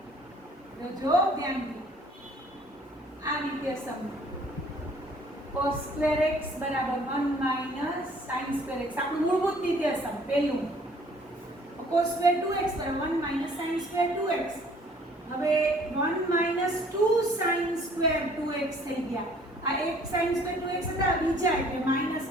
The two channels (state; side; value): normal; both; correlation 0.57